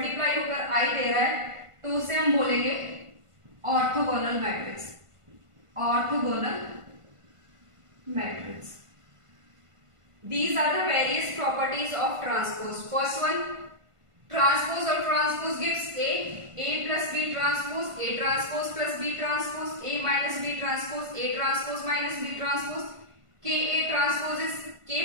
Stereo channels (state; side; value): late; left; 1.5 ms